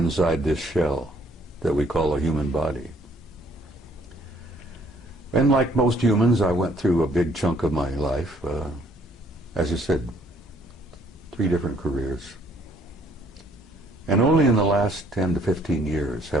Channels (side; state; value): both; normal; correlation 0.63